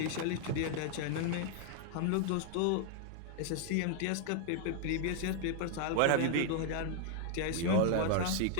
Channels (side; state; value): both; different; correlation 0.00